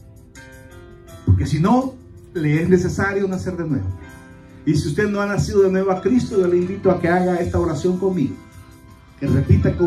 Porque si no, le es necesario nacer de nuevo. Y si usted no ha nacido de nuevo a Cristo, yo le invito a que haga esta oración conmigo, que repita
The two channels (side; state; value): both; identical; correlation 1.00